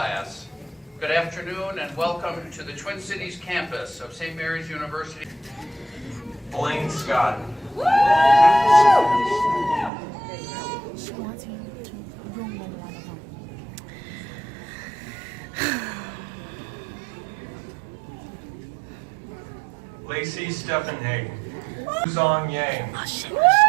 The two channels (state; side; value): drops out; left; at 9.9 s